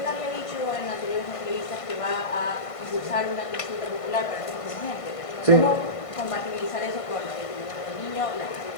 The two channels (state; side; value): late; right; 1.5 ms